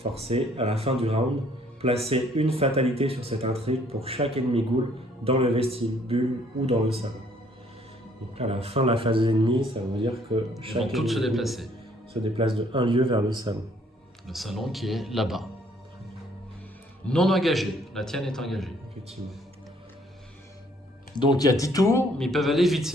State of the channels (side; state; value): both; normal; correlation 0.63